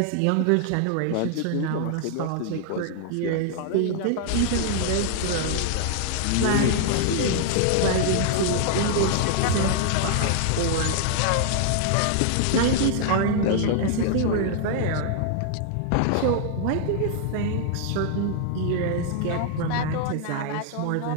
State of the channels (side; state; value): both; different; correlation 0.00